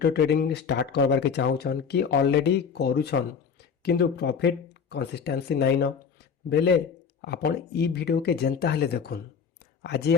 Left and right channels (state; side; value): quieter; right; 6.5 dB